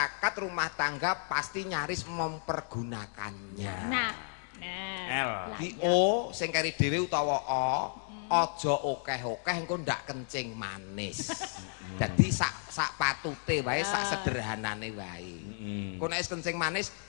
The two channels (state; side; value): silent; right; 56 dB below the other